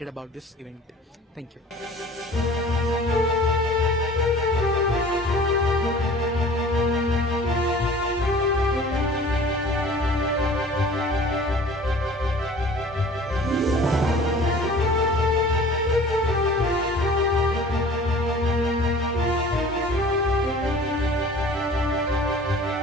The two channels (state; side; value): normal; both; correlation 0.46